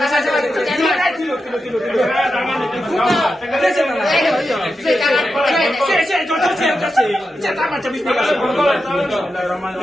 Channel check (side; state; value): both; normal; correlation 0.89